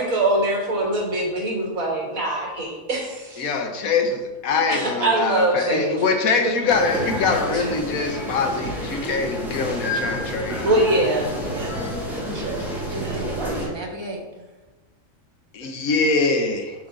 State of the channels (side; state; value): both; normal; correlation -0.01